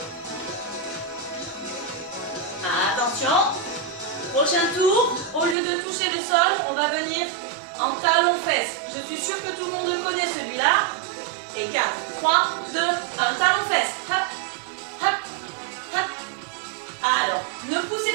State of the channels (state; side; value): drops out; left; at 5.6 s